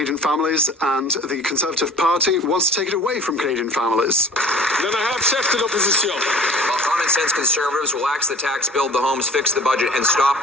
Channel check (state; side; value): normal; both; correlation 0.45